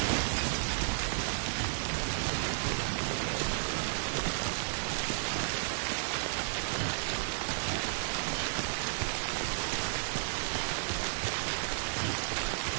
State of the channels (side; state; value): left; silent; digital silence